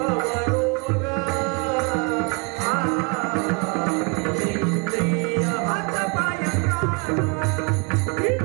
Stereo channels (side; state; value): left; quieter; 31.5 dB